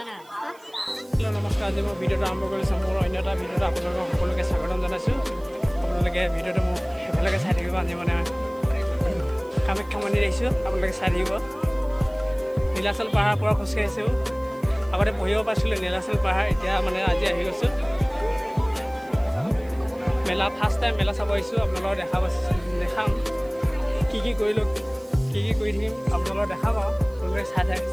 নমস্কাৰ আজি মই ভিডিঅ'টো আৰম্ভ কৰিছোঁ মোৰ অন্য এটা ভিডিঅ'ত আপোনালোকক সকলোকে স্বাগতম জনাইছোঁ আপোনালোকে ভিডিঅ'টো মোক সেইফালেকে চাই থাকিব আজি মানে কামাখ্যা মন্দিৰ আহিছোঁ আপোনালোকে চাই থাকিব নীলাচল পাহাৰ পৰা খোজকাঢ়িছোঁ আগতে পঢ়িব পাৰিছিলোঁ নীলাচল পাহাৰ এতিয়া মানে আজি আহি গৈছোঁ মেলা ফাৰ্ষ্ট টাইম মেলা চাব আহিছোঁ আপোনালোকক দেখাম কি কৰিলোঁ কি কৰি থাকিম আপোনালোকক দেখাম আৰু আপোনালোকে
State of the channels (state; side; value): noise; right; hiss, 27 dB below the sound